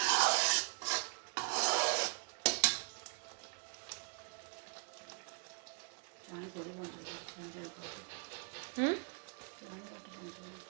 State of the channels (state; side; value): quieter; left; 37.8 dB